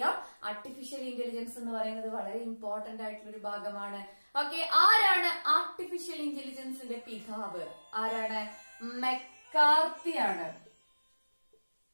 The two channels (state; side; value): inverted; both; correlation -1.00